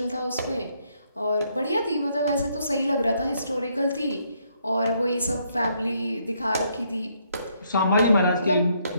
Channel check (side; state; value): both; inverted; correlation -0.72